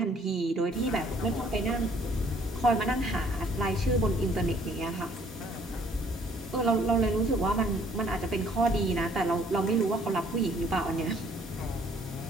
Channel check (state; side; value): normal; both; correlation 0.61